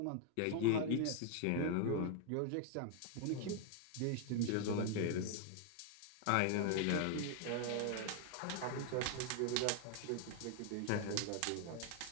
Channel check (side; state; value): both; different; correlation 0.00